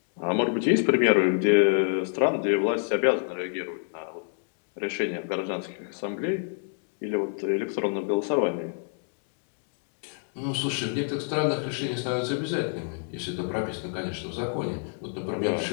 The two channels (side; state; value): right; silent; 60 dB below the other